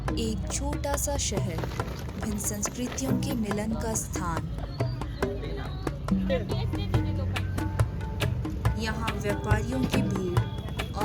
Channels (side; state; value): both; identical; correlation 1.00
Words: एक छोटा सा शहर, भिन्न संस्कृतियों के मिलन का स्थान। यहाँ व्यापारियों की भीड़